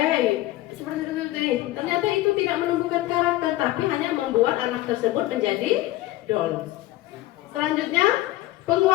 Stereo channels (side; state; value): right; quieter; 16.6 dB